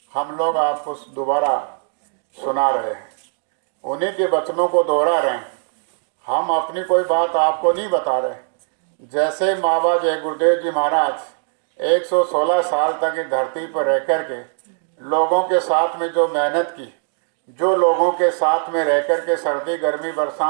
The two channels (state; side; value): silent; left; digital silence